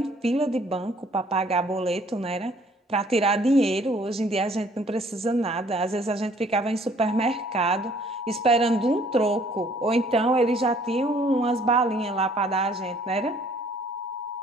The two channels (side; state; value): both; normal; correlation 0.59